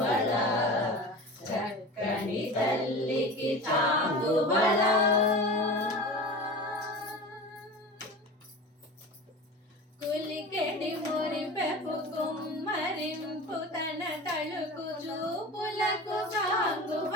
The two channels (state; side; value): normal; both; correlation 0.33